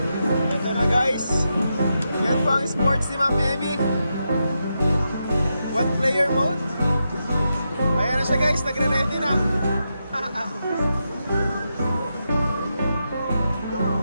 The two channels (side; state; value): both; inverted; correlation -0.86